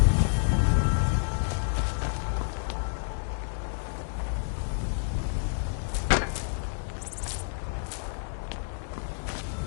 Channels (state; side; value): silent; right; digital silence